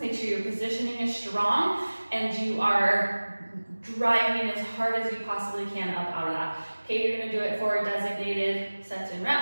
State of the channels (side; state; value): both; inverted; correlation -1.00